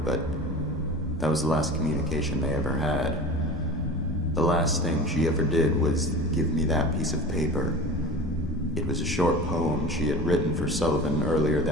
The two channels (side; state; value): both; normal; correlation 0.35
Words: but that was the last communication they ever had. The last thing she ever did was give me that piece of paper. It was a short poem she had written for Sullivan earlier